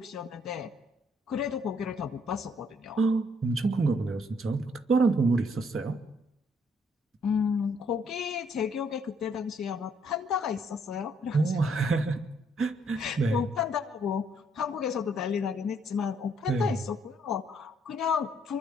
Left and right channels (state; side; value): normal; both; correlation 0.68